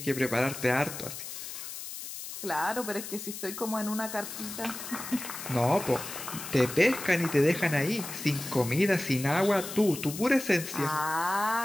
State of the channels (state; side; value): noise; left; hiss, 9 dB below the sound